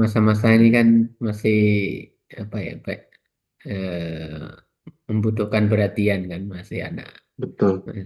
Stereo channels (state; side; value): identical; both; correlation 1.00